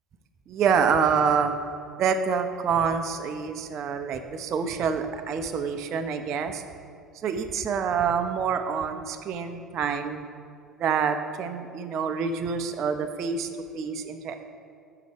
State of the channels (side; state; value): left; quieter; 6.0 dB